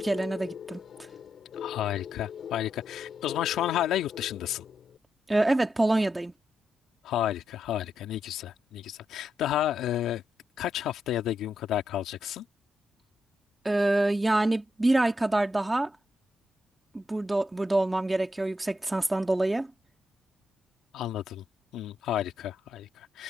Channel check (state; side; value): normal; both; correlation 0.83